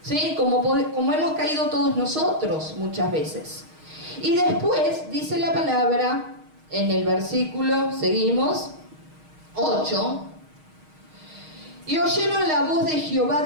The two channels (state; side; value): late; left; 6.4 ms